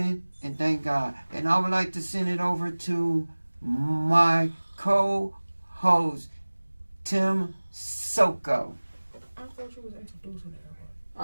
and thank God. And I would like to send it over to my co-host, Tim Soko. I thought you was introducing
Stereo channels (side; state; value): both; inverted; correlation -1.00